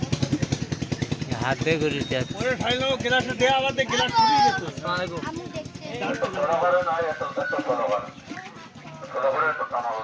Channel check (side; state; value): both; identical; correlation 1.00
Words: হাত দিয়ে করে যাচ্ছে ওরে ঠাইলো গ্লাস দে আবার দে গ্লাস ফুরিয়ে যেত আমি দেখছি